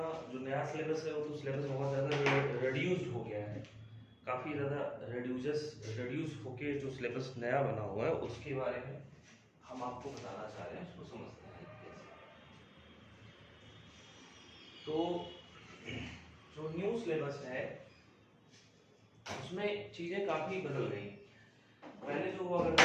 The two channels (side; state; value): both; identical; correlation 1.00